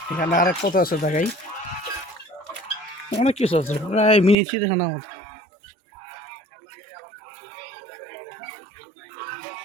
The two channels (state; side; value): drops out; left; at 4.4 s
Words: এখানে আরেক পথ আছে, দেখাই অনেক কিছু আছে, প্রায় মিনি চিড়িয়াখানার মতো।